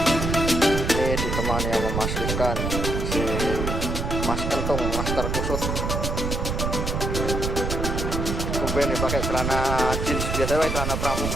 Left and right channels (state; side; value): noise; right; rumble, 1 dB below the sound